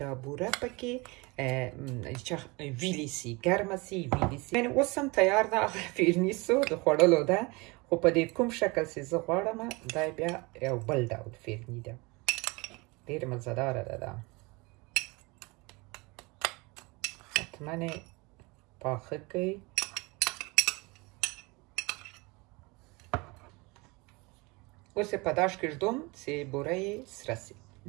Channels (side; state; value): left; quieter; 25.9 dB